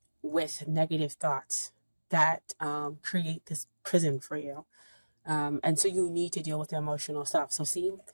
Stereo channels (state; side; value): inverted; both; correlation -1.00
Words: with negative thoughts that create this prison for you. And so you need to deal with the emotional stuff. So see,